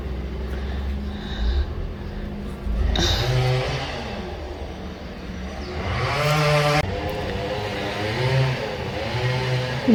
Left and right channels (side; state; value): both; identical; correlation 1.00